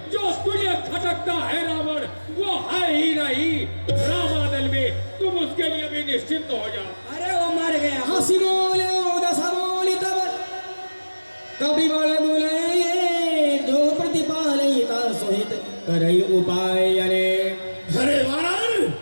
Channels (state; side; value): inverted; both; correlation -1.00